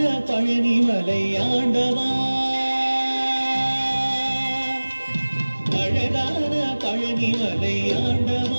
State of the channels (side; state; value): both; inverted; correlation -1.00